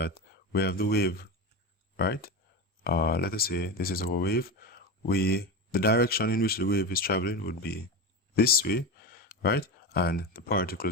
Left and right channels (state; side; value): normal; both; correlation 0.20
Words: we have the wave, right? Let us say this is our wave. The direction in which the wave is traveling would be this way, right? And the